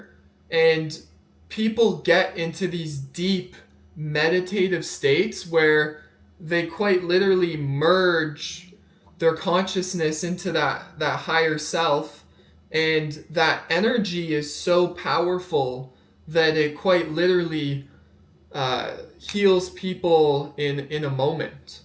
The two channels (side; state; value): both; identical; correlation 1.00